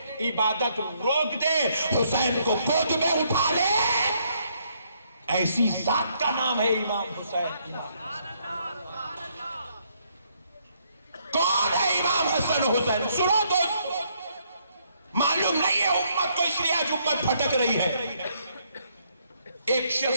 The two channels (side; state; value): both; inverted; correlation -0.71